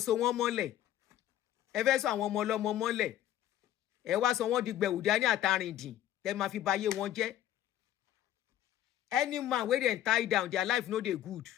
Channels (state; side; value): quieter; right; 12.4 dB